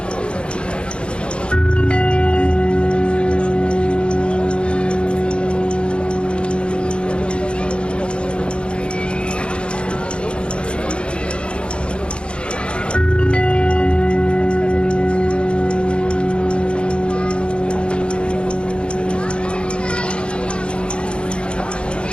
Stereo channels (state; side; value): late; right; 0.056 ms